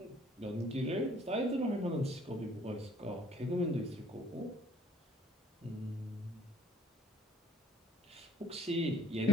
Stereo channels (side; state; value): both; normal; correlation 0.57